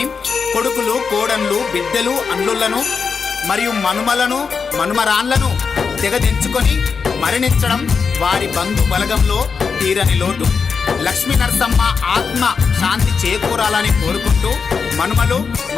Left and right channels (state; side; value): quieter; right; 5.6 dB